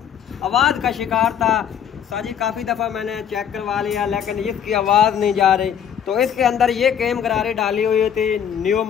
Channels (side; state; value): right; quieter; 8.6 dB